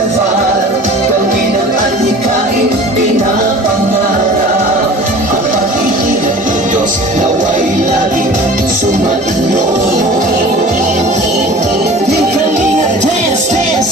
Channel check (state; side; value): normal; both; correlation 0.42